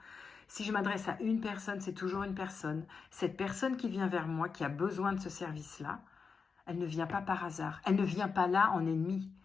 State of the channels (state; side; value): quieter; right; 5.3 dB